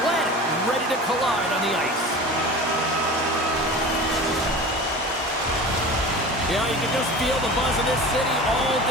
planet ready to collide on the ice. Yeah, you can just feel the buzz in this city all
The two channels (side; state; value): both; normal; correlation 0.35